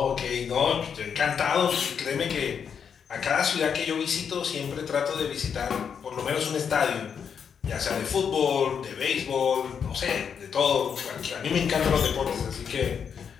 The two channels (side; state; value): right; quieter; 7.1 dB